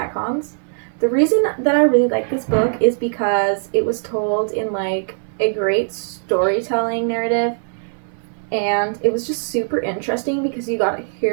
The reason that I really like this book is because it was told in like a great storytelling narrative, and it was just super interesting because you got to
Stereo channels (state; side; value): silent; left; digital silence